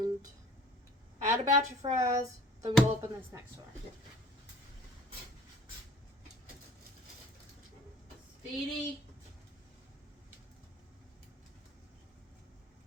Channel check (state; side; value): normal; both; correlation 0.50